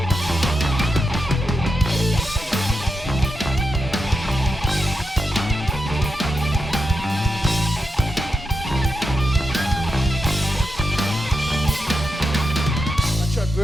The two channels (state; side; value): normal; both; correlation 0.87